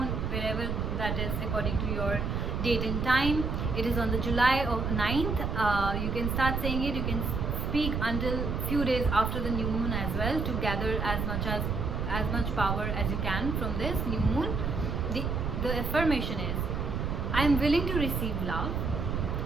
wherever that is according to your date and time. It is on the July 9th. You can start saying it. You can speak until few days after the new moon as well to gather as much power as you can from this new moon. The affirmation is, I am willing to receive love.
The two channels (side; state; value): right; noise; rumble, 1 dB below the sound